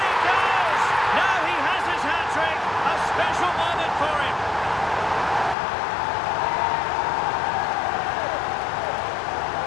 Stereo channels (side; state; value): right; drops out; at 5.6 s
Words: he goes! Now he has his hat-trick. A special moment for him.